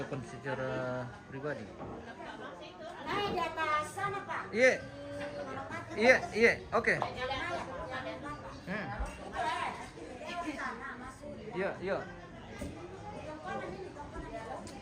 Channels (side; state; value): both; identical; correlation 1.00